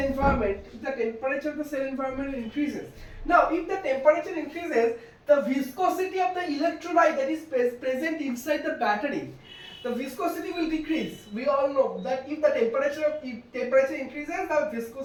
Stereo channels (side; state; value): both; identical; correlation 1.00